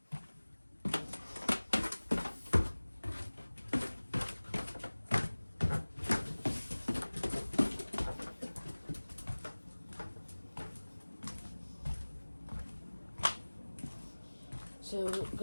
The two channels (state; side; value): inverted; both; correlation -1.00